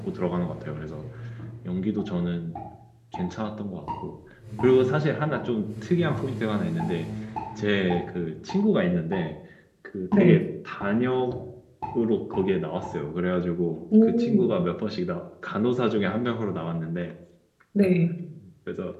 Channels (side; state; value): both; identical; correlation 1.00